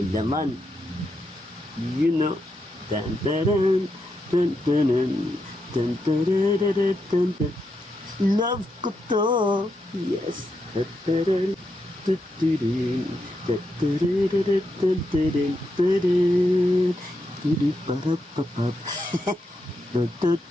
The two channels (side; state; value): both; normal; correlation 0.83